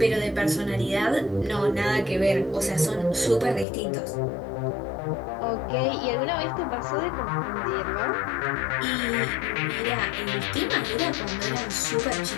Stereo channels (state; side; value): drops out; right; at 3.7 s